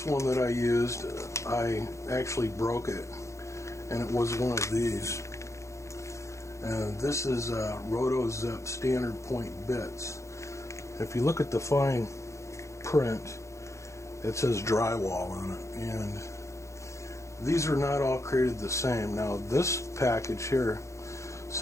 one that I used, I actually broke it, and it was one of these. And this is RotoZip standard point bits. If you look at the fine print, it says drywall on it, and these are not all created the same. Now this package here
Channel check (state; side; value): late; right; 0.14 ms